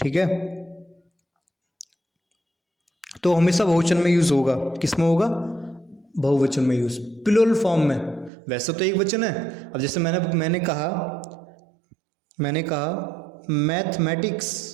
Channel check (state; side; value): drops out; left; at 8.3 s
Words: है, तो हमेशा बहुवचन में यूज होगा। किस में होगा? बहुवचन में यूज, प्लूरल फॉर्म में। वैसे तो एक वचन है। अब जैसे मैंने कहा